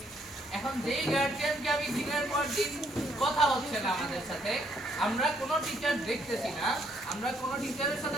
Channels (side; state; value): both; normal; correlation 0.69